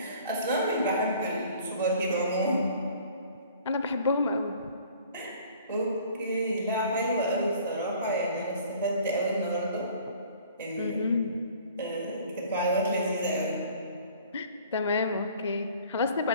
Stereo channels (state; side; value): inverted; both; correlation -0.52